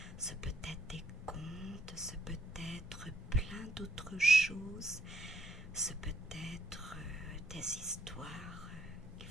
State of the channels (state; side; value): normal; both; correlation 0.74